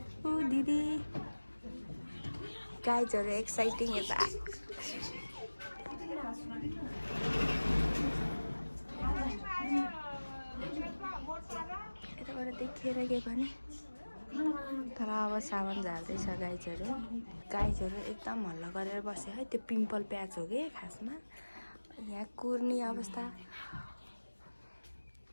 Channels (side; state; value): both; inverted; correlation -1.00